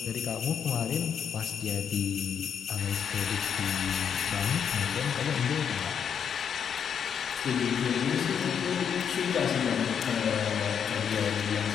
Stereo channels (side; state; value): right; quieter; 7.7 dB